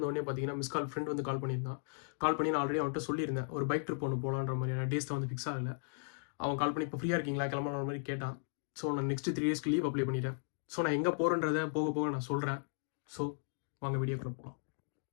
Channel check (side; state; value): right; silent; digital silence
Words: உடனே பார்த்தீங்கன்னா மிஸ் கால் ஃப்ரெண்ட் வந்து கால் பண்ணியிருந்தான். கால் பண்ணி நான் ஆல்ரெடி அவன்கிட்ட சொல்லியிருந்தேன், ஒரு பைக் ட்ரிப் ஒன்று போகலான்ற மாதிரியான டேஸ் தான் வந்து ஃபிக்ஸ் ஆகலை. அவன் கால் பண்ணி இப்போ ஃப்ரீயாக இருக்கீங்களா கிளம்புற மாதிரி கேட்டான். ஸோ நான் நெக்ஸ்ட் 3 டேஸ்க்கு லீவ் அப்ளை பண்ணிட்டேன். ஸோ நான் எங்கே போகிறேன்றதை போக போக நான் சொல்கிறேன். ஸோ வாங்க வீடியோக்குள்ளே போகலாம்.